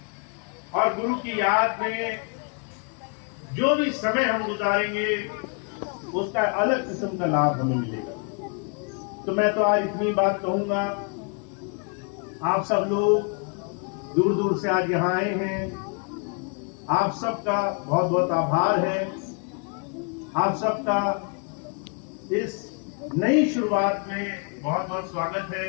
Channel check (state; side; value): quieter; right; 38.7 dB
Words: और गुरु की याद में जो भी समय हम गुजारेंगे, उसका अलग किस्म का लाभ हमें मिलेगा। तो मैं तो आज इतनी बात कहूंगा, आप सब लोग दूर दूर से आज यहाँ आए हैं, आप सबका बहुत बहुत आभार है। आप सबका इस नई शुरुआत में बहुत बहुत स्वागत है।